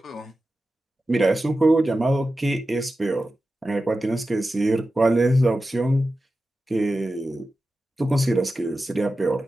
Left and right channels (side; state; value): both; normal; correlation 0.93